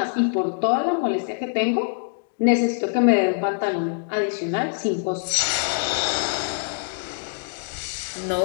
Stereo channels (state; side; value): silent; right; digital silence